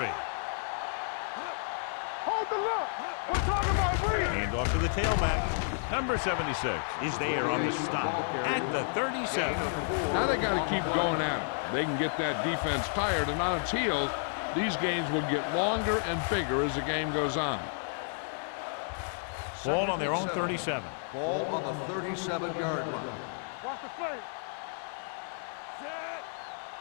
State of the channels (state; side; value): silent; right; 57 dB below the other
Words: Hold the look. We're talking about breathing. Hand off to the tailback. Number 76 is there on the stop at the 37. Now they got to keep going at it. They can get that defense tired and on its heels. These games will get longer and bigger as the game goes on. Ball on their own 37. Ball on the 37-yard line. Watch the play. Set.